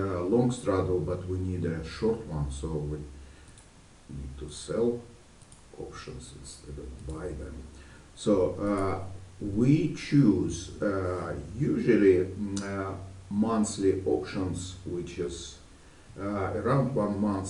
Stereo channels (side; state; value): both; identical; correlation 1.00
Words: straddle, but we need a short one, so we need to sell options instead of buy them. So we choose usually monthly options, which is around 1